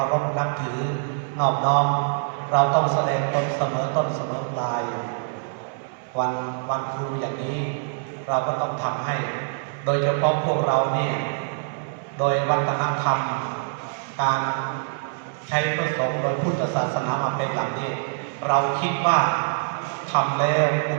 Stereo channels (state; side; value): silent; left; 62 dB below the other